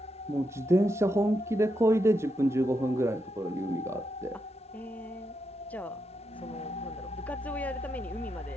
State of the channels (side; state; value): both; normal; correlation 0.83